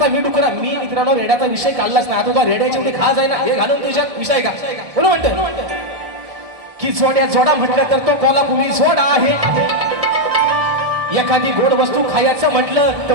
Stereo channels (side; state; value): left; late; 1.6 ms